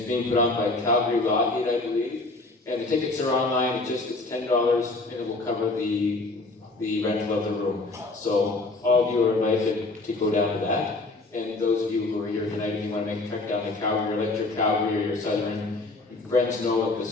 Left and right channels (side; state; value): right; quieter; 3.2 dB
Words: being put on by Calgary Lockheed, I believe. And the tickets are online, it's $10, and it will cover the rental of the room. So all of you are invited to go down to that. And those of you who are here tonight, if you want to make a trek down to Calgary, or let your Calgary or your Southern friends know that